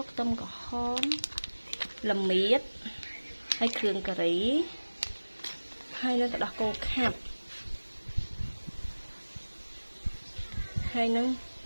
ខ្ទឹមក្រហមល្មៀតហើយគ្រឿងការីហើយនឹងទឹកដោះគោខាប់ហើយនឹង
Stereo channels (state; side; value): inverted; both; correlation -1.00